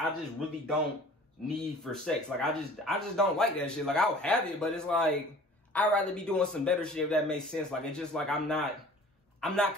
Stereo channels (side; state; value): both; normal; correlation 0.47